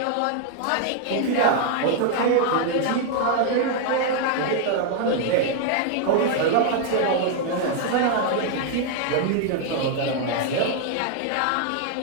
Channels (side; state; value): both; different; correlation 0.00